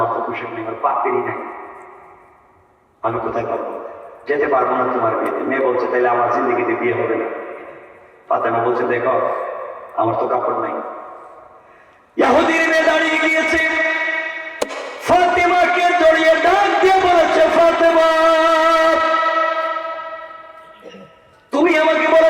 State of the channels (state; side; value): identical; both; correlation 1.00